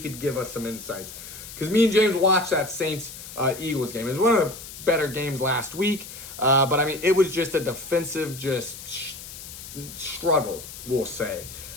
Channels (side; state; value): left; noise; hiss, 13 dB below the sound